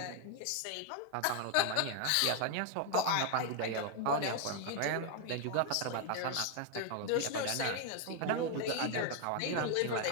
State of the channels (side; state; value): both; different; correlation 0.01